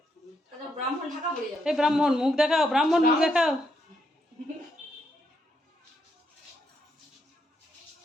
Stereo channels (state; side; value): normal; both; correlation 0.78